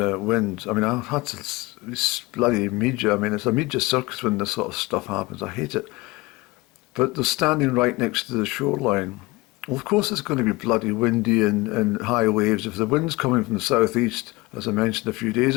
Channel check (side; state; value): right; quieter; 22.1 dB